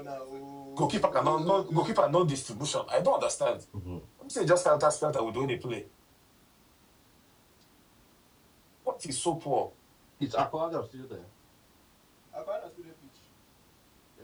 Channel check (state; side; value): identical; both; correlation 1.00